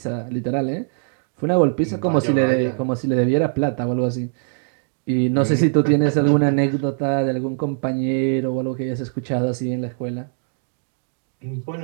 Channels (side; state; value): left; silent; digital silence